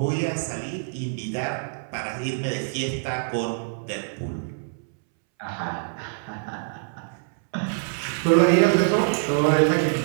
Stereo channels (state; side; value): silent; left; 62 dB below the other